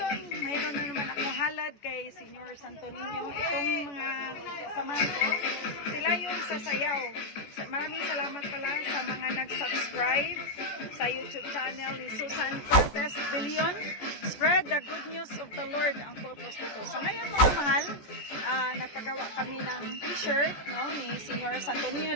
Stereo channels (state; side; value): late; right; 14 ms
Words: mayroon na naman akong halad kay Senior Santo Niño. Itong mga samahan ko, sila yung sasayaw. Maraming salamat pala sa mga nag-subscribe sa YouTube channel ni Susan Cortez Billion. Spread the good news of the Lord ang purpose dito. So ngayon mga mahal, nagpagawa kami ng t-shirt, no, ni Senior Santo Niño